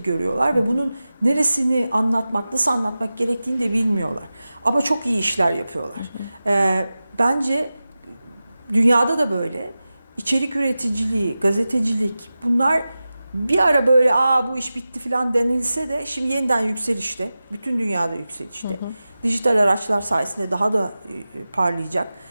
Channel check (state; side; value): inverted; both; correlation -0.95